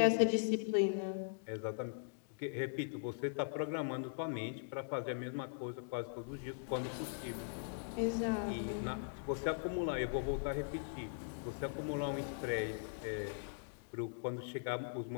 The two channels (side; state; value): right; silent; digital silence